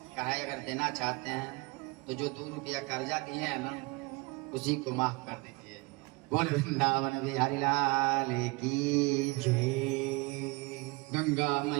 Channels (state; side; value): quieter; left; 26.2 dB